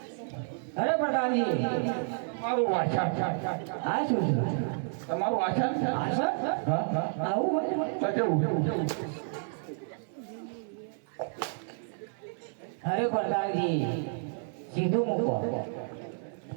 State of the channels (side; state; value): left; silent; 57 dB below the other